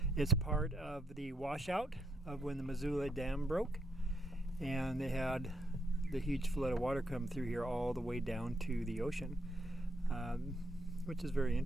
It's part of the washout of when the Missoula Dam broke, and they had the huge flood of water come through here all the way down to the ocean, which is very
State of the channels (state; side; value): normal; both; correlation 0.78